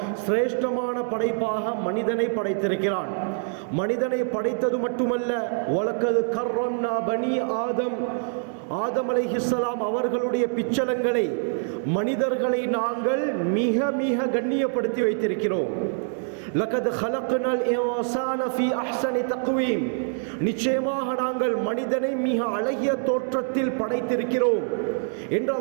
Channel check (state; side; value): silent; left; 62 dB below the other